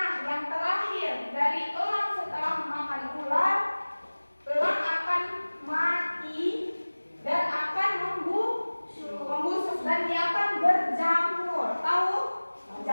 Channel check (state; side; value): inverted; both; correlation -1.00